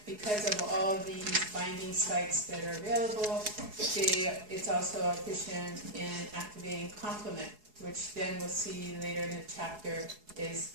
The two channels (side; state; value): left; late; 4.7 ms